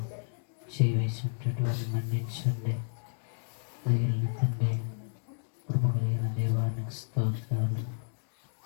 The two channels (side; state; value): right; silent; digital silence